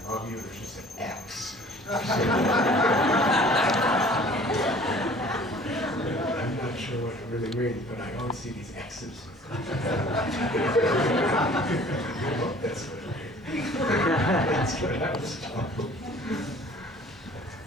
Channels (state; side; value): normal; both; correlation 0.50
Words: love you, there's just an X. I'm not sure what it really means, but I always see these X's. I hope that's what it means. That's what I was told.